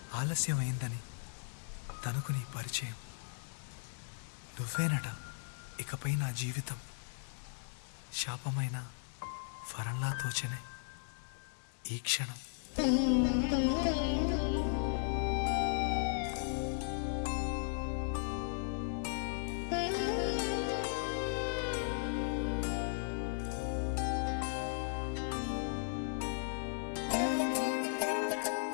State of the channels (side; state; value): right; silent; digital silence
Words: ఆలస్యమైందని తనకు నీ పరిచయం. నువ్వేనట ఇకపై నా జీవితం, శాపమైన వరంలా తోచనే ఈ క్షణం.